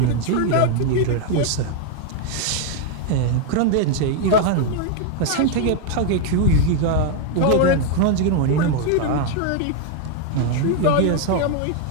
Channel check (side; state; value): both; different; correlation 0.00